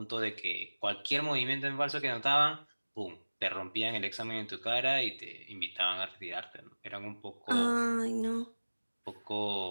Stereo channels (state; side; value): inverted; both; correlation -1.00